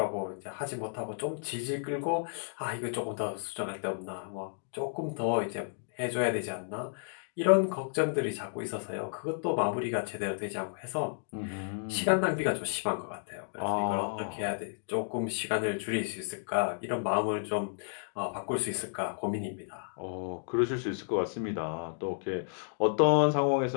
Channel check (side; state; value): right; silent; digital silence